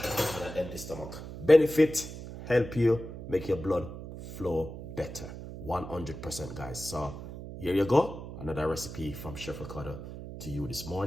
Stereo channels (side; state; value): right; noise; hum, 10 dB below the sound